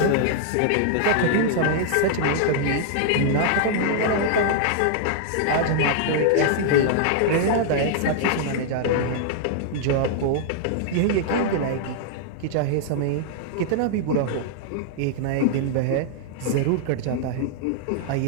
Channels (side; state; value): both; different; correlation -0.01